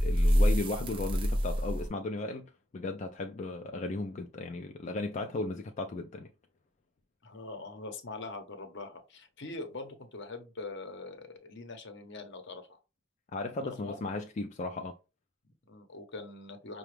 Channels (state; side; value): normal; both; correlation 0.72